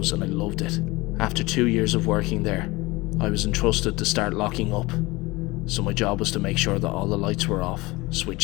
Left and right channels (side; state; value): right; quieter; 22.0 dB